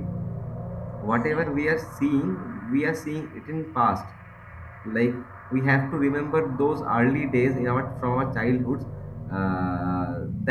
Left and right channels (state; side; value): identical; both; correlation 1.00